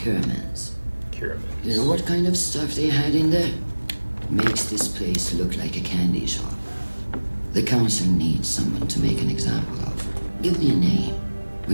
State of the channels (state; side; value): inverted; both; correlation -1.00